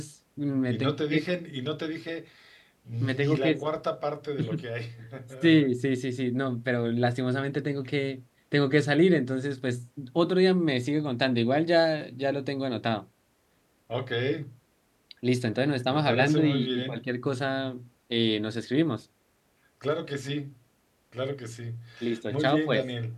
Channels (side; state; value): both; identical; correlation 1.00